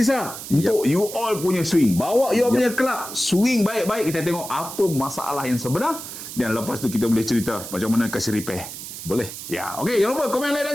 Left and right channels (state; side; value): noise; right; hiss, 10 dB below the sound